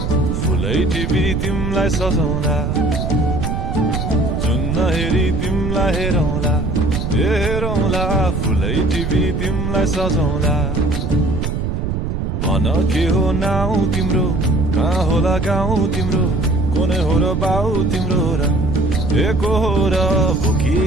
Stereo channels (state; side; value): noise; right; rumble, 2 dB below the sound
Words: फुलै टिपी तिमलाई सजाउँला जुन नहेरी तिमलाई हेरौँला हेरौँला फुलै टिपी तिमलाई सजाउँला भन के हो नाउ तिम्रो कहाँ होला गाउँ तिम्रो कोने हो र बाउ तिम्रो र एको हो र भोकी